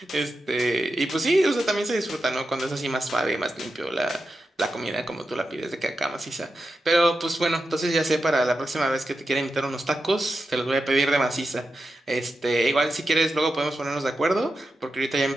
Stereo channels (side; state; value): both; normal; correlation 0.89